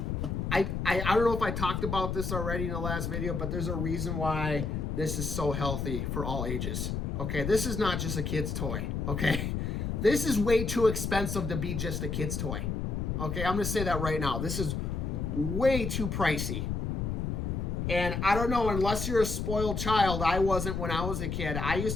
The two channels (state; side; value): noise; left; rumble, 2 dB below the sound